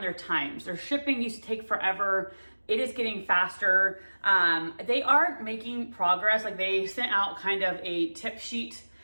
their times. Their shipping used to take forever. It is getting faster. They are making progress. Like they sent out kind of a tip sheet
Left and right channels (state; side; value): inverted; both; correlation -1.00